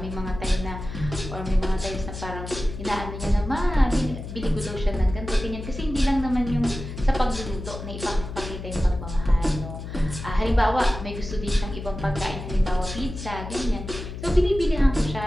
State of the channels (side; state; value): left; noise; hum, 9 dB below the sound